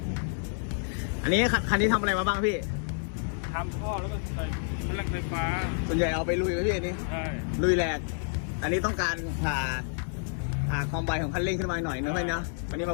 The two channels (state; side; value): silent; right; digital silence